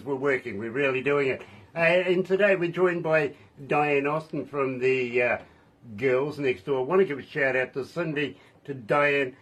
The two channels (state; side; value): identical; both; correlation 1.00